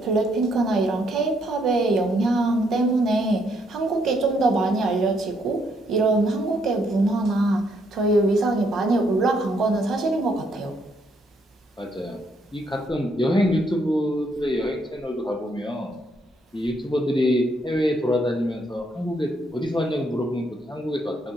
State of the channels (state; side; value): normal; both; correlation 0.73